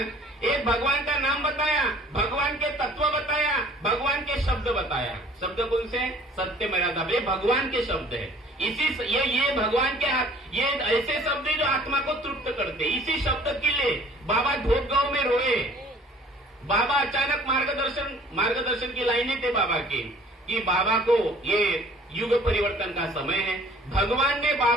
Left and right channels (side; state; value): both; normal; correlation 0.52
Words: एक भगवान का नाम बताया, भगवान के तत्व बताया, भगवान के शब्द बताया। शब्द कौन से? सत्य मर्यादा, ये भगवान के शब्द है। इसी ये भगवान के ये ऐसे शब्द है जो आत्मा को तृप्त करते। इसी शब्द के लिए बाबा धोप गांव में रोए, बाबा अचानक मार्गदर्शन की लाइनें थे बाबा की कि बाबा को ये युग परिवर्तन का समय है। भगवान